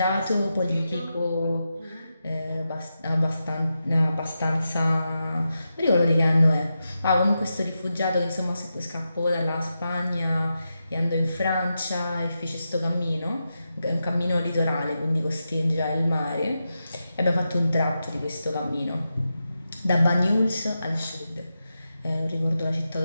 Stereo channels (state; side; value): inverted; both; correlation -0.89